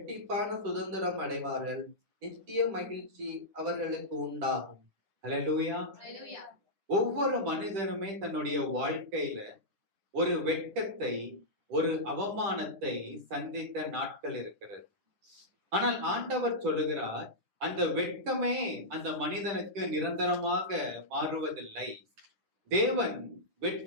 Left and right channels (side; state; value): left; late; 10 ms